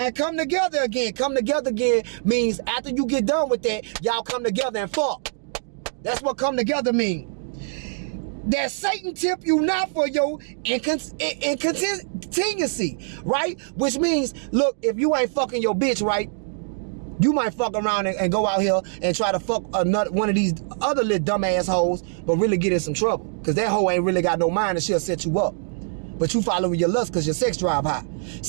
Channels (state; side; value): silent; left; digital silence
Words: come together again. Come together again means after you get done with that, y'all come together and fuck. That's what come together mean. That Satan tempt you not for your incontinency, right? Which means, look, if you ain't fucking your bitch, right, you might fuck around and go out here and try to fuck one of these other little dumbass hoes, but really get in some trouble. Because that hoe ain't really got no mind and she'll set you up. But you following your lust because your sex drive high.